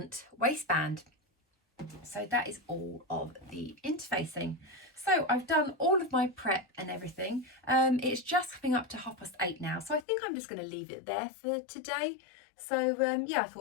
waistband. So that is all of the interfacing. So I've done all of my prep and everything. It's just coming up to 8:30 now, so I think I'm just going to leave it there for today. So yeah, I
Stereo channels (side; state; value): right; drops out; at 10.1 s